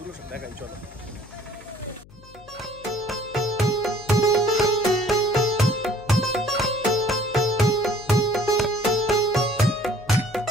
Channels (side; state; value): left; noise; hum, 23 dB below the sound